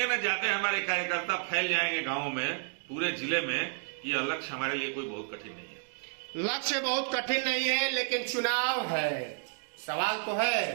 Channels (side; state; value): left; silent; 56 dB below the other